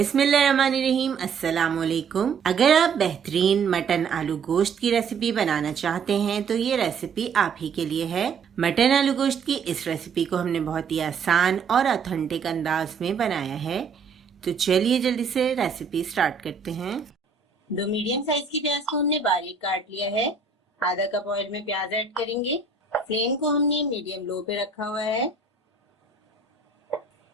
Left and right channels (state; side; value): quieter; left; 5.3 dB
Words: अस्सलाम वालेकुम। अगर आप बेहतरीन मटन आलू गोश्त की रेसिपी बनाना चाहते हैं तो ये रेसिपी आप ही के लिए है। मटन आलू गोश्त की इस रेसिपी को हमने बहुत ही आसान और ऑथेंटिक अंदाज में बनाया है। तो चलिए जल्दी से रेसिपी स्टार्ट करते हैं। 2 मीडियम साइज की प्याज को हमने बारीक काट लिया है। आधा कप ऑयल में प्याज ऐड करेंगे। फ्लेम को हमने मीडियम लो पे रखा हुआ है।